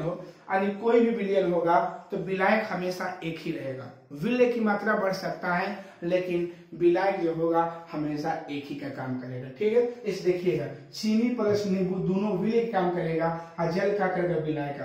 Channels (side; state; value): both; identical; correlation 1.00